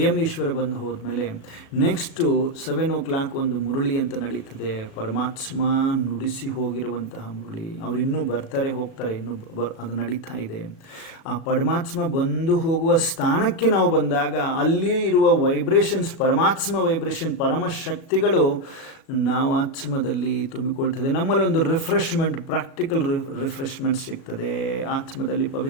ಈಶ್ವರ ಬಂದು ಹೋದ್ಮೇಲೆ ನೆಕ್ಸ್ಟು 7 o'clock ಒಂದು ಮುರಳಿ ಅಂತ ನಡೀತದೆ. ಪರಮಾತ್ಮ ನುಡಿಸಿ ಹೋಗಿರುವಂತಹ ಮುರಳಿ. ಅವರು ಇನ್ನೂ ಬರ್ತಾರೆ ಹೋಗ್ತಾರೆ, ಇನ್ನೂ ಅದು ನಡೀತಾ ಇದೆ. ಆ ಪರಮಾತ್ಮ ಬಂದು ಹೋಗುವ ಸ್ಥಾನಕ್ಕೆ ನಾವು ಬಂದಾಗ ಅಲ್ಲಿ ಇರುವ ವೈಬ್ರೇಷನ್ಸ್, ಪರಮಾತ್ಮ ವೈಬ್ರೇಷನ್, ಪರಮಶಕ್ತಿಗಳು ನಾವು ಆತ್ಮದಲ್ಲಿ ತುಂಬಿಕೊಳ್ತದೆ. ನಮ್ಮಲ್ಲಿ ಒಂದು ರಿಫ್ರೆಶ್ಮೆಂಟ್, ಪ್ರಾಕ್ಟಿಕಲ್ ರಿಫ್ರೆಶ್ಮೆಂಟ್ ಸಿಗ್ತದೆ. ಆತ್ಮದಲ್ಲಿ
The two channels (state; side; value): late; right; 36 ms